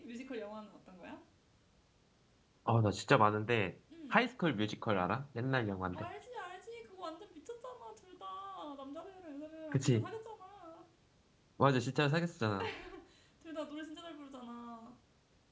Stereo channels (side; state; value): both; identical; correlation 1.00